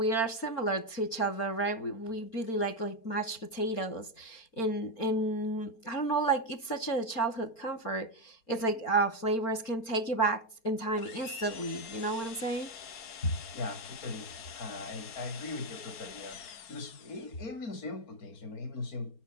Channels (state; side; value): late; right; 4.3 ms